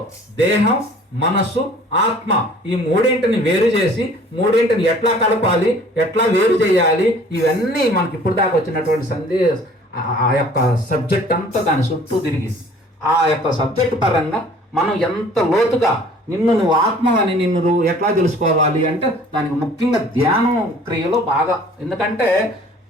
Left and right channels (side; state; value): both; normal; correlation 0.51